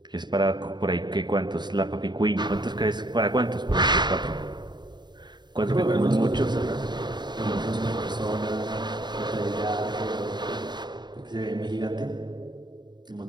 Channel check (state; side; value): late; left; 0.21 ms